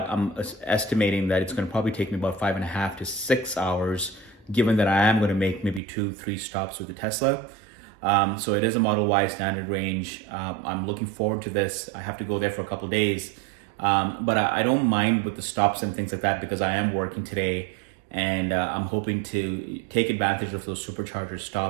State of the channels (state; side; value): drops out; left; at 5.8 s